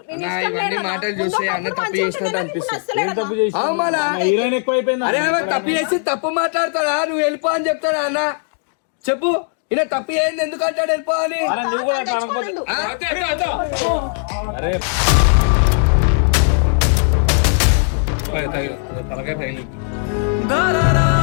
నేను ఇష్టం ఇవన్నీ లేదు. మాటలు చూస్తే అన్న తప్పు చేసినట్టు అనిపిస్తుంది. తప్పు చేసి అవును మళ్ళా. హీరోయిన్ ఎక్కువైపోయింది. అరే ఆమె తప్పు చేసి తప్పు మాట్లాడతాడా? నువ్వు వెళ్ళిపో అని చెప్తాడా అన్న? చెప్పు. ఈయన తప్పు ఏంది ఎందుకు అంటాడు వెళ్ళిపో అని? అరే నువ్వు కూడా అట్లా అనకపోతే అరే తలకాయ తగిలి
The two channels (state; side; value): silent; right; 59 dB below the other